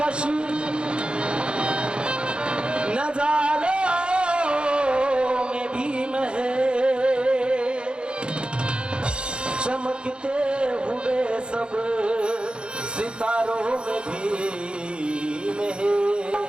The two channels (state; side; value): late; left; 0.054 ms